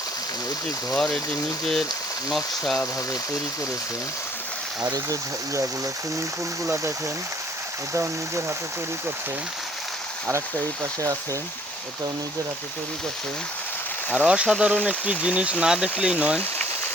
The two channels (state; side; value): normal; both; correlation 0.59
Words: এটি ঘর, এটি নিজের নকশাভাবে তৈরি করেছে। আর এই যে ইয়াগুলো, সুইমিং পুলগুলো দেখেন, এটাও নিজের হাতে তৈরি করছে। আর একটা এই পাশে আছে, এটাও নিজের হাতে তৈরি করছে। আর অসাধারণ একটি জিনিস, না দেখলেই নয়,